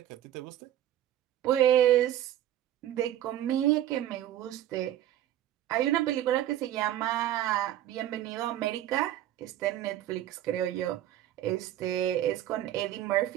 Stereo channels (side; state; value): left; quieter; 12.5 dB